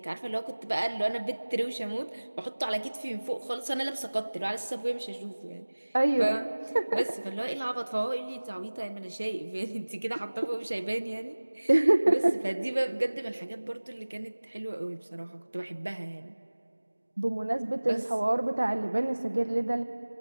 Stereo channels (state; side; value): inverted; both; correlation -1.00